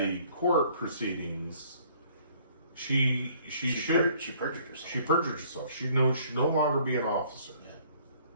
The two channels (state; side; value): inverted; both; correlation -0.59